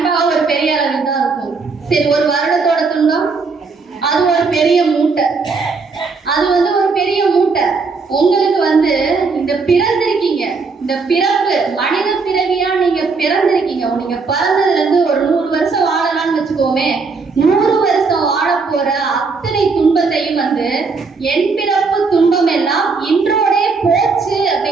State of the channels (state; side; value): quieter; left; 4.5 dB